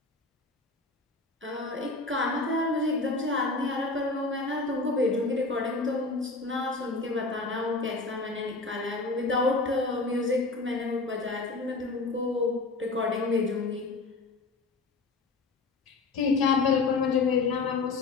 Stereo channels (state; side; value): quieter; right; 3.6 dB